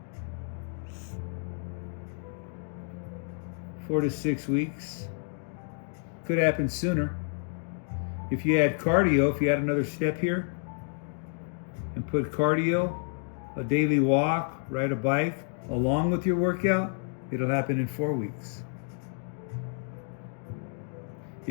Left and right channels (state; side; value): silent; right; 58 dB below the other